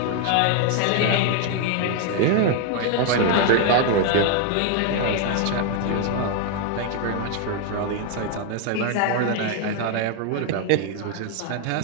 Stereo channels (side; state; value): both; different; correlation 0.00